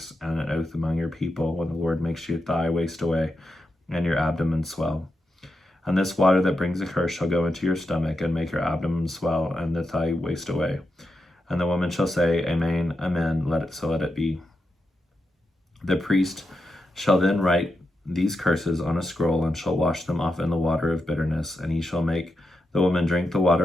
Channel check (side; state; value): both; normal; correlation 0.87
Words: and an oath among your people, when the Lord makes your thigh waste away, and your abdomen swell. And this water that brings a curse shall go into your stomach, and make your abdomen swell, and the thigh waste away. And the woman shall say, Amen, amen, let it be. The priest shall then write these curses on a scroll, and shall wash them off in the water of bitterness, and he shall make the woman drink the